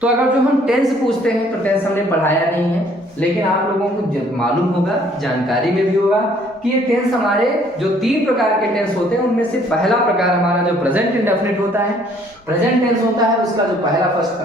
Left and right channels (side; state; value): both; normal; correlation 0.61